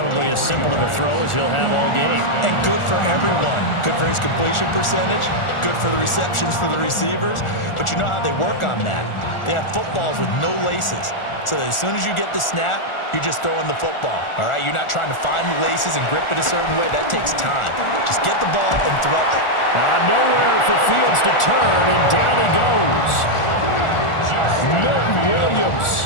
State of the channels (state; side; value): late; right; 1.4 ms